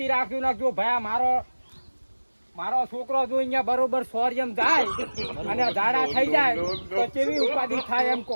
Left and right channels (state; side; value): inverted; both; correlation -1.00